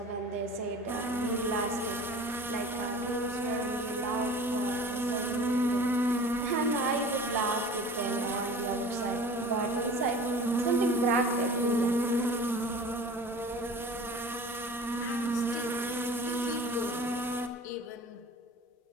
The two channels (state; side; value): normal; both; correlation 0.41